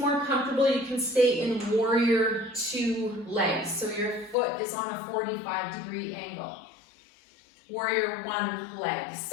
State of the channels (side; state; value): right; drops out; at 4.4 s